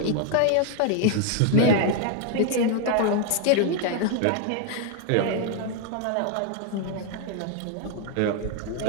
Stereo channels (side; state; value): both; different; correlation 0.00